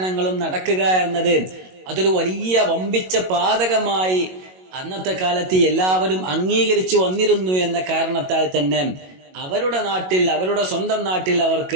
നടക്കുക എന്നത് അതൊരു വലിയ വമ്പിച്ച പാതകമായി അന്നത്തെ കാലത്ത് എല്ലാവരും അംഗീകരിച്ചു വന്നിരുന്നു എന്ന കാരണത്താൽ തന്നെ അവരുടെ നാട്ടിൽ, അവരുടെ സ്വന്തം നാട്ടിൽ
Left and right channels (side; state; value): left; late; 22 ms